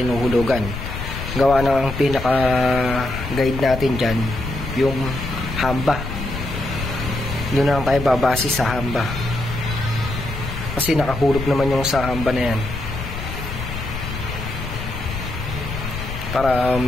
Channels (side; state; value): left; noise; rumble, 7 dB below the sound